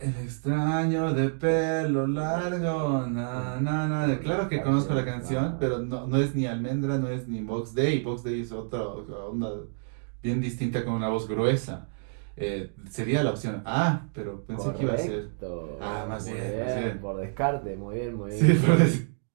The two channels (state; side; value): silent; left; digital silence